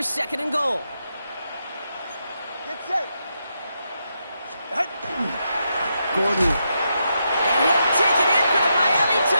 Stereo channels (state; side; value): inverted; both; correlation -0.83